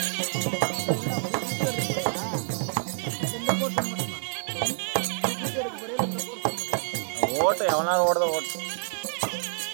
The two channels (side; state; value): left; silent; digital silence